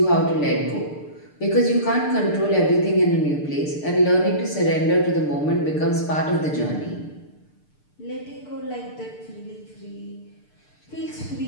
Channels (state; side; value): late; right; 6.7 ms